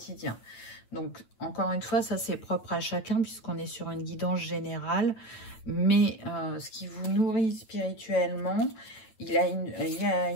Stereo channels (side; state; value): right; late; 9.0 ms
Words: Donc, encore une fois, ça c'est propre à chacun puisqu'on est sur une guidance générale. Mais ce qui vous nourrit spirituellement, il y a